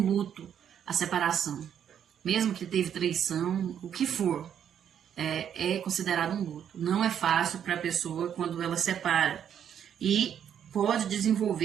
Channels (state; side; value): quieter; left; 9.0 dB